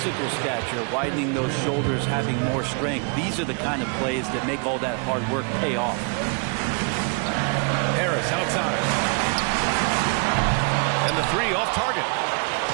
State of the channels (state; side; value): quieter; left; 36.5 dB